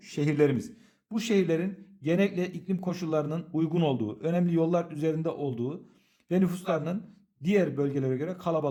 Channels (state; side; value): identical; both; correlation 1.00